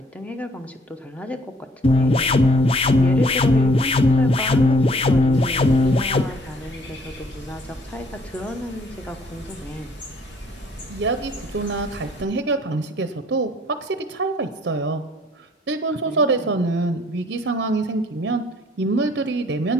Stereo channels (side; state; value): both; normal; correlation 0.60